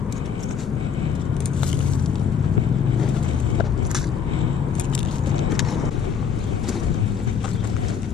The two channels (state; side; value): quieter; right; 7.0 dB